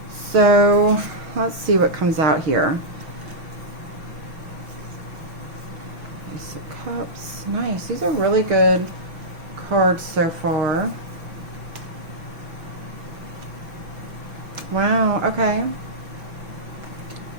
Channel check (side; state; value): left; late; 6.1 ms